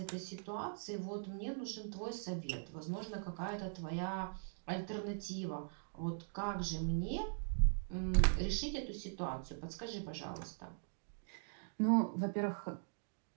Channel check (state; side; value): silent; left; digital silence